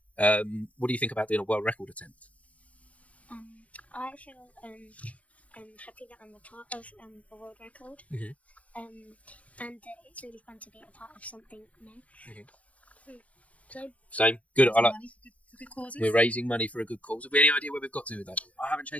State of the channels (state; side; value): late; right; 0.066 ms